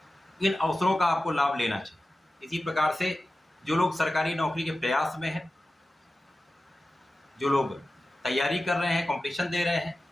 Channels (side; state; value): both; normal; correlation 0.94